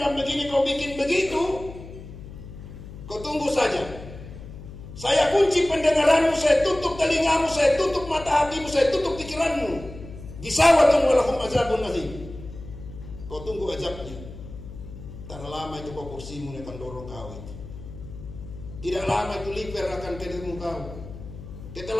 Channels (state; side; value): noise; left; hum, 13 dB below the sound